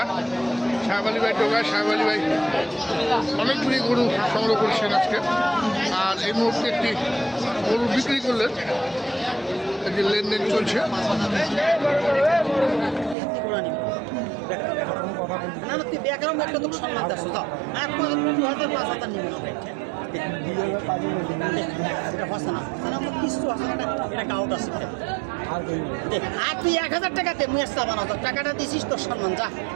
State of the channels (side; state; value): left; drops out; at 13.2 s